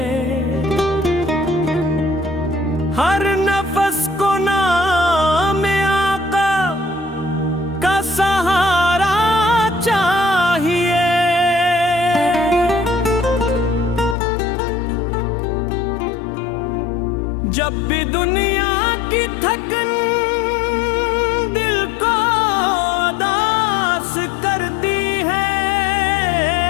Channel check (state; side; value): drops out; right; at 14.2 s